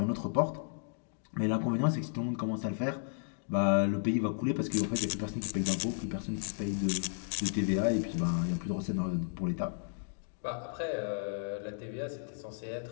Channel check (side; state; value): right; silent; digital silence